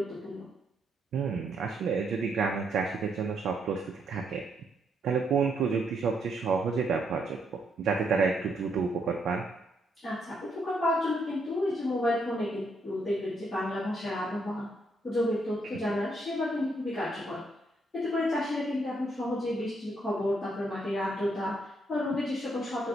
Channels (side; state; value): both; normal; correlation 0.75